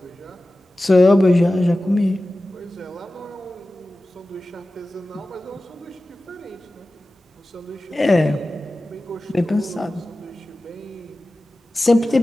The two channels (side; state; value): both; normal; correlation 0.95